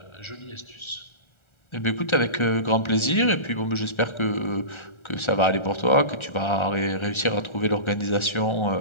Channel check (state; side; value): late; right; 1.3 ms